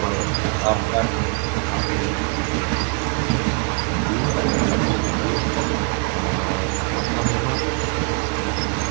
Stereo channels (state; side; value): quieter; left; 35.7 dB